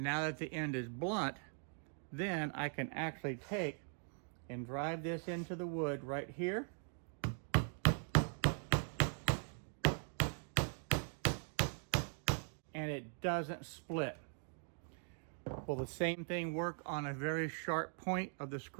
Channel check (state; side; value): silent; left; 50 dB below the other